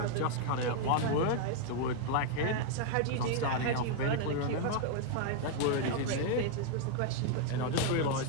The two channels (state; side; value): different; both; correlation 0.00